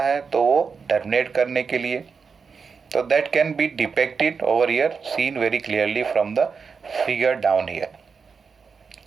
है तो वो टर्मिनेट करने के लिए. तो that can be depicted over here, seen very clearly from the figure down here.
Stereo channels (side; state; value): left; quieter; 5.5 dB